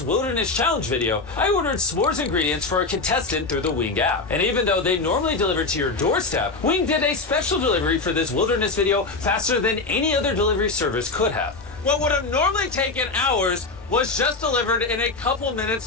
Wilderness Challenge video, I ordered s'mores ingredients for a contestant through the Wing app. And even though they normally deliver to your doorstep, Wing did a special delivery for this Wilderness video faster than any other delivery service could have. What would have normally taken hours was just delivered in a couple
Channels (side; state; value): right; quieter; 3.7 dB